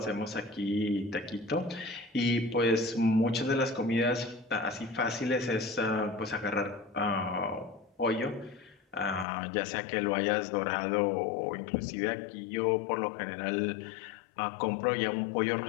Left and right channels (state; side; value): drops out; right; at 9.2 s